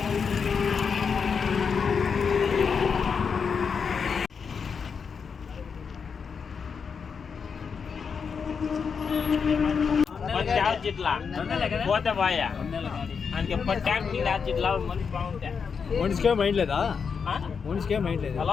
పోతే బాయా ఆయనకి ఎప్పటి ట్యాంక్ నీళ్ళు ఇట్లా మనిషి బాగుంటాయి మనిషికే మైండ్ లేదా మనిషికే మైండ్ లేదా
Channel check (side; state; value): right; quieter; 6.0 dB